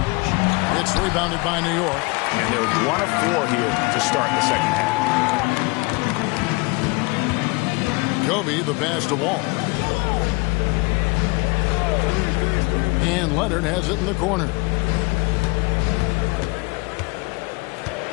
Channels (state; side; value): quieter; right; 27.3 dB